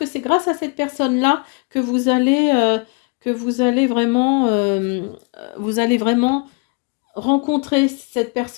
c'est grâce à cette personne-là que vous allez vraiment rencontrer cette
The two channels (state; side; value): quieter; right; 32.7 dB